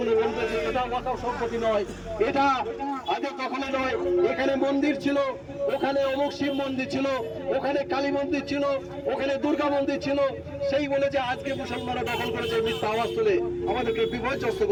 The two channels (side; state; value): both; identical; correlation 1.00